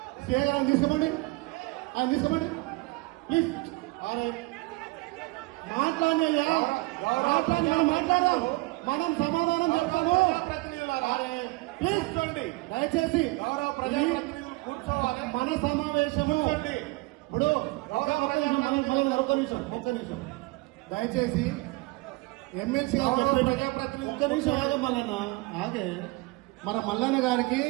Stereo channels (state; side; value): quieter; left; 23.3 dB